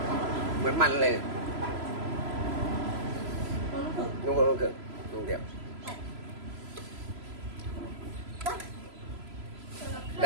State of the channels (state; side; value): late; left; 3.0 ms